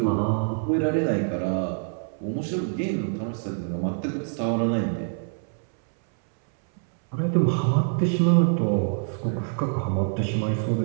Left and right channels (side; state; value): left; silent; 62 dB below the other